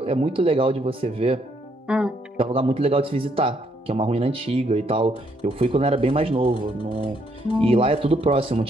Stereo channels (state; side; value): normal; both; correlation 0.72